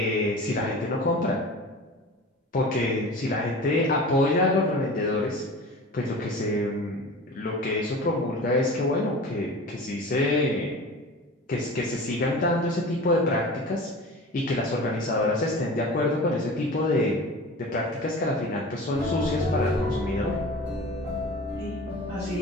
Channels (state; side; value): normal; both; correlation 0.36